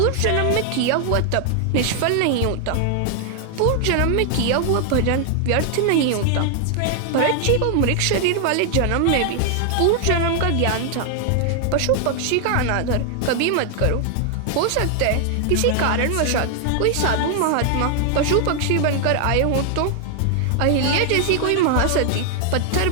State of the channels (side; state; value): both; different; correlation 0.00